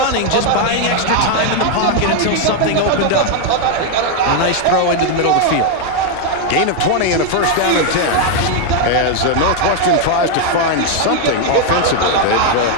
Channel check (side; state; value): both; different; correlation 0.01